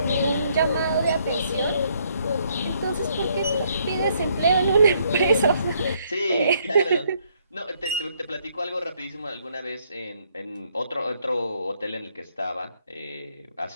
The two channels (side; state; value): both; inverted; correlation -0.70